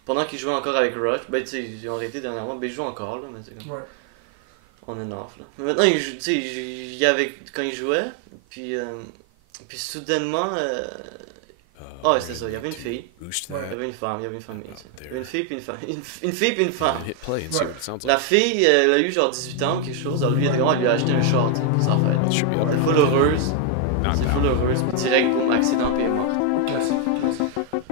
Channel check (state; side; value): different; both; correlation 0.01